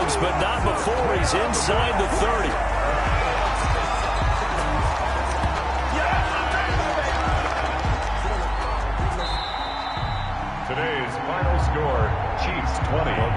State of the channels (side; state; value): both; identical; correlation 1.00